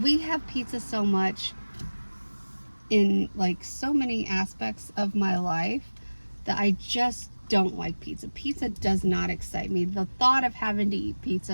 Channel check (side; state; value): both; inverted; correlation -1.00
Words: we have pizza so much in like so many aspects of my life that I just don't like pizza. Pizza does not excite me. The thought of having to eat